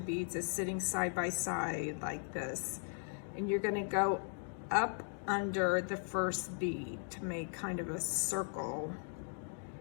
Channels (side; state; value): right; silent; 53 dB below the other